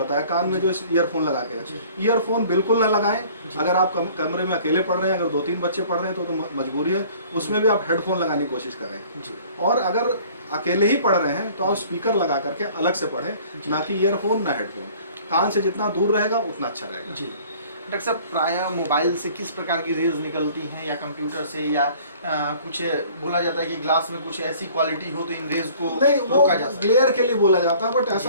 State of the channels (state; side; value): inverted; both; correlation -0.52